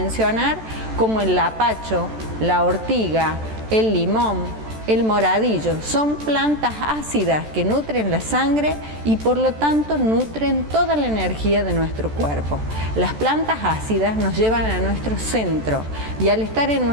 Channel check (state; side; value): late; left; 14 ms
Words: como el lapacho, la ortiga, el limón, el moradillo. Son plantas ácidas que nutren la sangre y por lo tanto nutren toda la energía de nuestro cuerpo. Las plantas ácidas nos llevan a nuestro centro y al estar en